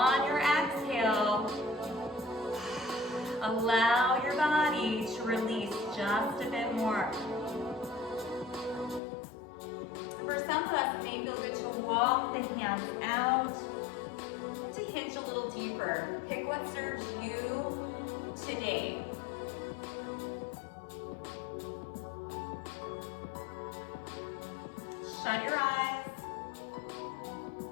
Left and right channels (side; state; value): right; drops out; at 9.0 s